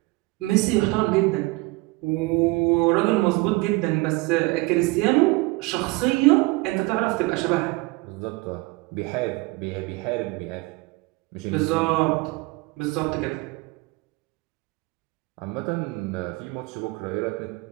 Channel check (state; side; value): quieter; left; 23.2 dB